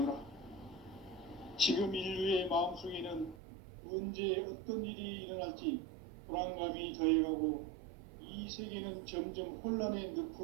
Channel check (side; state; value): left; drops out; at 3.4 s